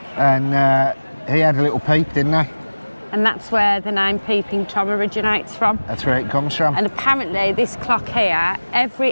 and he had a little peep, didn't he? and that's where the name Peeping Tom originates from. That's where it comes from. And apparently this clock here,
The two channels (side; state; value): both; inverted; correlation -1.00